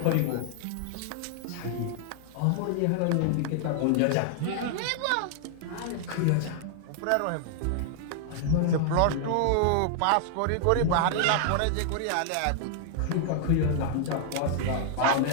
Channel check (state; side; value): different; both; correlation -0.01